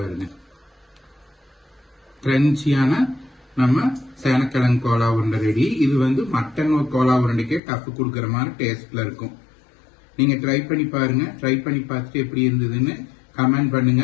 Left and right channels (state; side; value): drops out; right; at 7.6 s